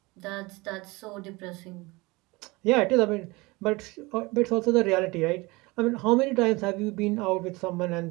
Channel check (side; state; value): left; quieter; 23.4 dB